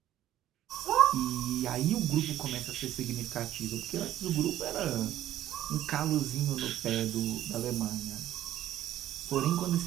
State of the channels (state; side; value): quieter; left; 12.6 dB